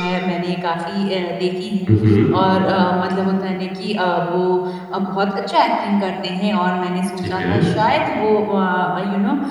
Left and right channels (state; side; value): identical; both; correlation 1.00